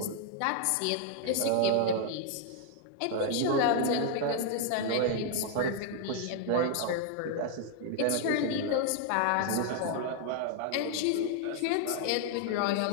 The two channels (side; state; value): both; different; correlation 0.00